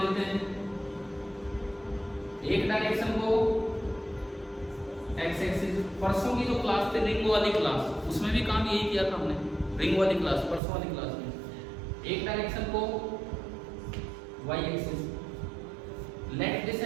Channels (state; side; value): drops out; left; at 10.6 s